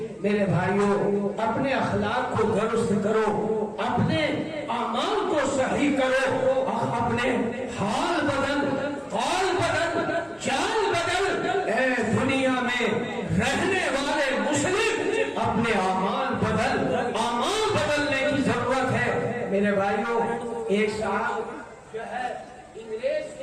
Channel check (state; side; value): identical; both; correlation 1.00